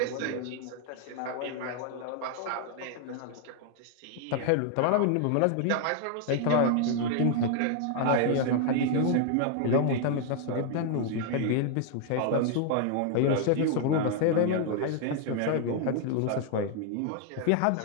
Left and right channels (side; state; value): both; different; correlation 0.00